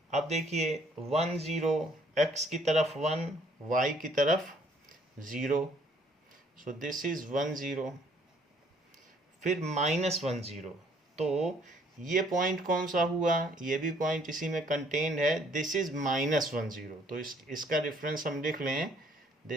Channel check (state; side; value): normal; both; correlation 0.63